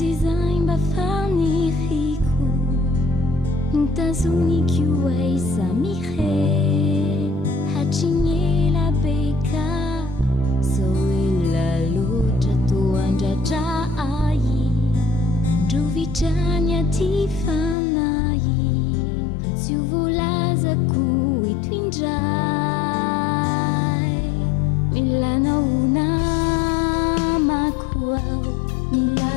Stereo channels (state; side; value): drops out; right; at 17.8 s